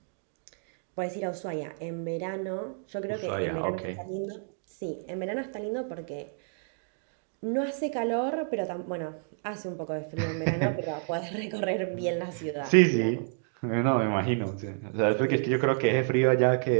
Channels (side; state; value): left; silent; digital silence